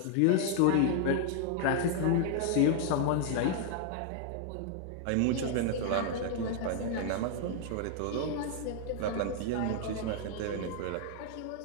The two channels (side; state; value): both; different; correlation 0.00